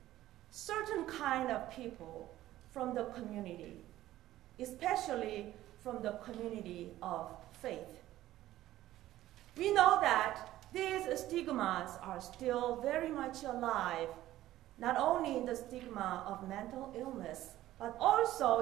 certain kind of people from the community, especially from the community of faith. We know that these stigmas are still very much alive, not only in the stigma of mental illness, but also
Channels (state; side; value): quieter; left; 14.5 dB